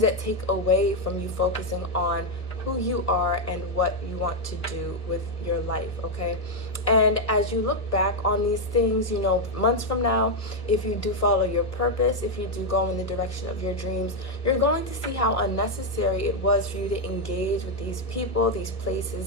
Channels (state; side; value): late; right; 1.3 ms